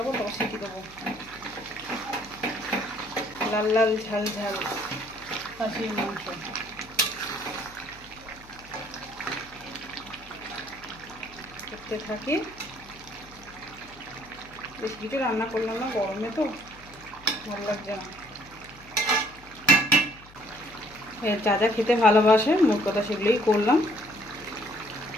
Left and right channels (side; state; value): left; noise; hum, 23 dB below the sound